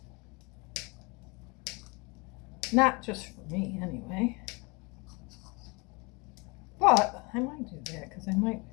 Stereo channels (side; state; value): right; quieter; 28.7 dB